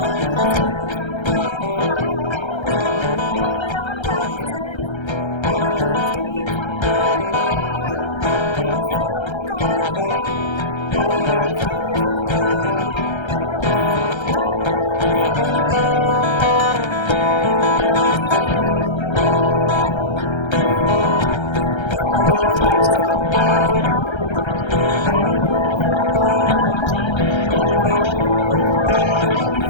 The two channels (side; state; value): right; late; 1.3 ms